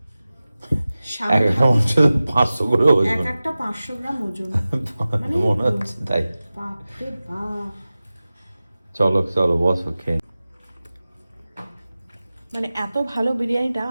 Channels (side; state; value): both; inverted; correlation -0.96